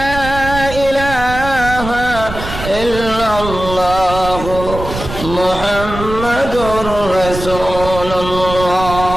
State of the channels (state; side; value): noise; right; rumble, 9 dB below the sound